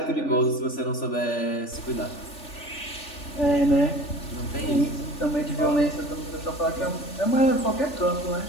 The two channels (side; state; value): right; late; 3.4 ms